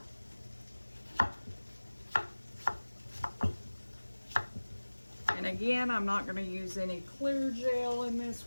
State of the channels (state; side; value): inverted; both; correlation -1.00